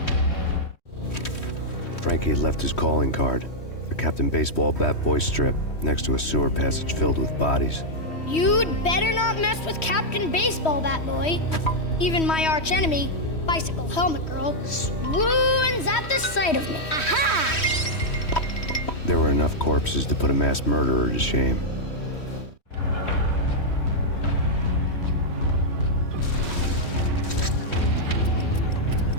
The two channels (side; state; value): right; late; 3.1 ms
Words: Frankie had left his calling card. A Captain Baseball bat boy strip next to a sewer passage filled with bodies. You'd better not mess with Captain Baseball Bat Boy. Even my archenemy, Bicycle Helmet Girl, swoons at the sight of me. Aha! There were enough corpses to put a mass murderer to shame.